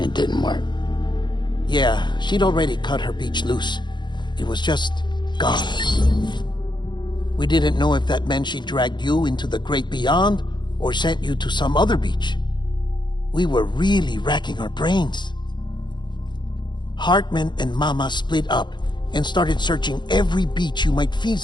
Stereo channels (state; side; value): late; right; 0.22 ms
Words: didn't work. Yeah, she'd already cut her beach loose. It was just gone. We didn't know if that meant she dragged you into the great beyond or sent you to some other beach. We were really racking our brains. Hartman and Mama split up, and started searching every beach you might